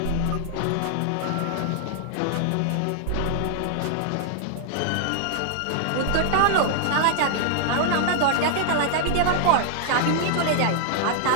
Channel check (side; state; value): both; different; correlation 0.00